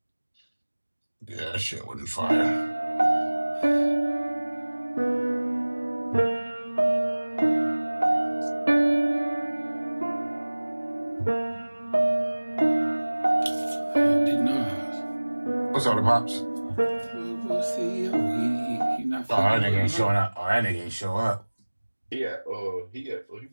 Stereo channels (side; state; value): both; inverted; correlation -1.00